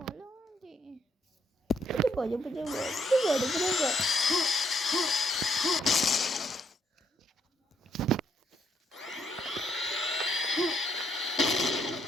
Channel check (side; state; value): both; normal; correlation 0.72